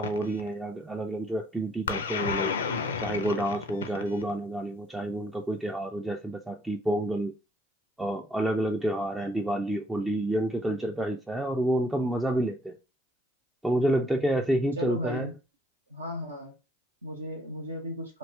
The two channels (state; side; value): normal; both; correlation 0.66